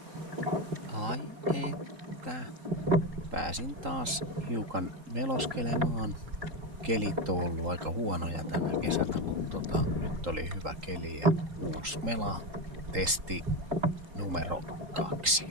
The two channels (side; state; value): left; late; 3.8 ms